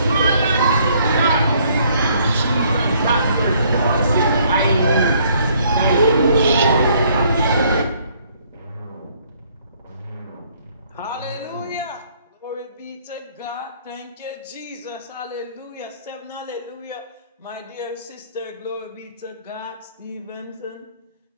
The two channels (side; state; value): both; inverted; correlation -0.64